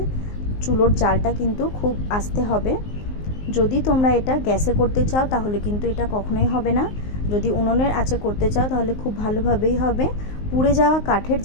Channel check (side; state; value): right; late; 19 ms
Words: চুলোর জালটা কিন্তু খুব আস্তে হবে। যদি তোমরা এটা গ্যাসে করতে চাও তাহলে কিন্তু এটা কখনোই হবে না। যদি উনুনের আঁচে করতে চাও তাহলে খুব ভালোভাবেই হবে। পুড়ে যাওয়া কাঠের